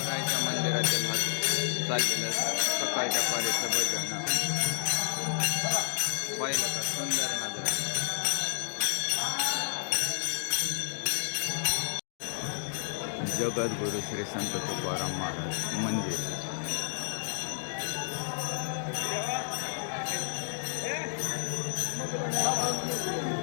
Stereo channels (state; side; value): silent; right; digital silence